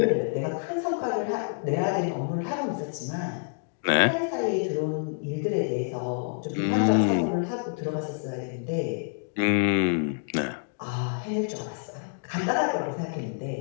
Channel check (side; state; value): right; silent; digital silence